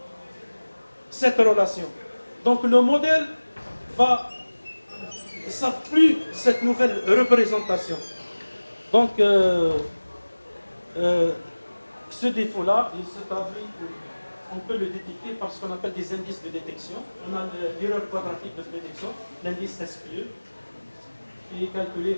cette relation. Donc, le modèle ne savent plus cette nouvelle représentation. Donc, ce défaut-là, il se traduit, on peut le détecter par ce qu'on appelle des indices de détection. On a l'erreur quadratique de prédiction, l'indice SQE, qui est calculé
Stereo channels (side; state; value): both; inverted; correlation -1.00